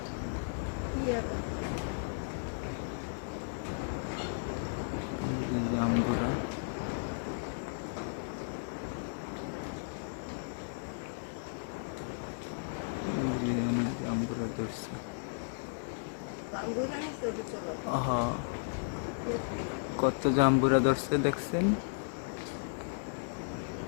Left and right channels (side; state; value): right; silent; digital silence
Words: জাম্বুরা অনেক জাম্বুরা ধরছে। আহা, কত জাম্বুরা ধরছে দেখছেন।